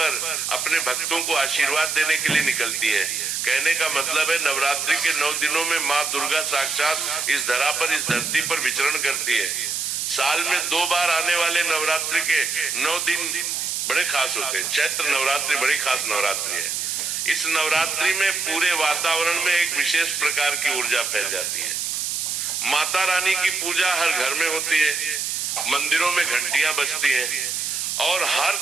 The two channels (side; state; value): right; noise; hiss, 1 dB below the sound